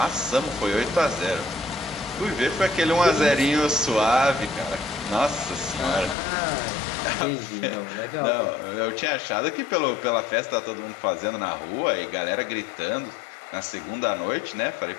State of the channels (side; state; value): right; drops out; at 6.2 s